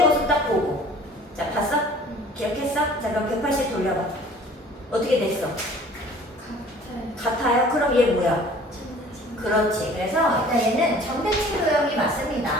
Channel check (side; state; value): both; normal; correlation 0.49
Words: 모습 딱 보고. 자, 봤어? 기억했어? 자, 그럼 180 돌려봐. 어떻게 됐어? 같아요? 그럼 얘 뭐야? 그렇지. 그래서 일단 얘는 점대칭 도형이 맞습니다.